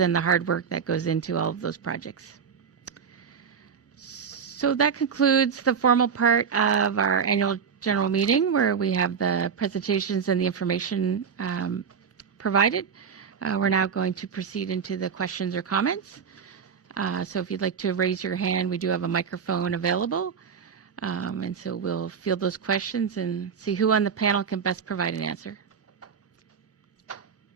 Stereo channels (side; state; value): left; quieter; 6.7 dB